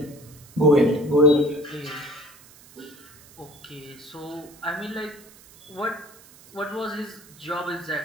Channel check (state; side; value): noise; right; hiss, 23 dB below the sound